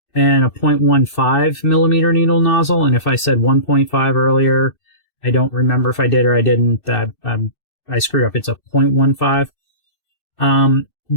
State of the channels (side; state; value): right; late; 2.6 ms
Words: 0.15 millimeter needle nozzle. And if I said 1.5 earlier, I don't remember if I did or I didn't. I screwed up. It's a 0.15.